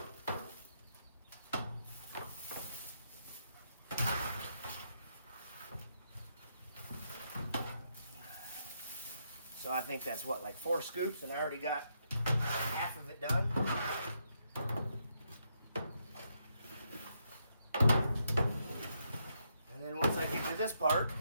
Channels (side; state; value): both; inverted; correlation -0.78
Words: So I think that's what, like 4 scoops, and I already got half of it done. And then once I get to this part,